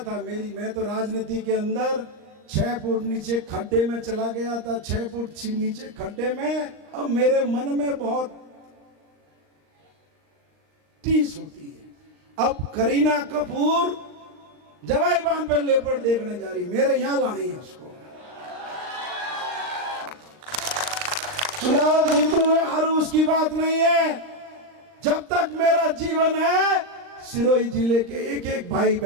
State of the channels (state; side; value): late; left; 39 ms